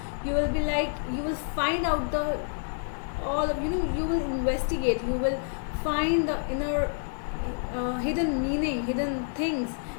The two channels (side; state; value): right; silent; digital silence